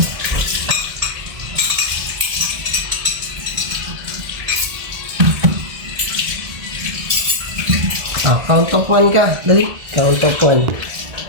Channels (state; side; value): late; left; 1.7 ms